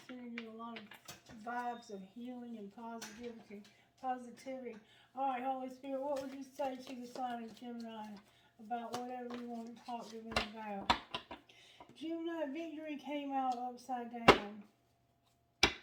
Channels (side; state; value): both; identical; correlation 1.00